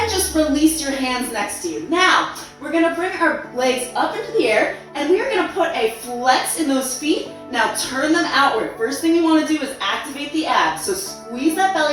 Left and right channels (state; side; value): identical; both; correlation 1.00